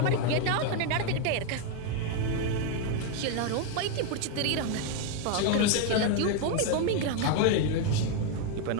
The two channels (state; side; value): different; both; correlation 0.01